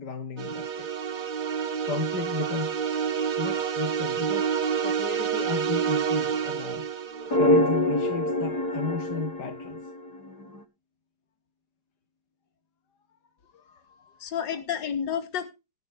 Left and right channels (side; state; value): right; late; 4.8 ms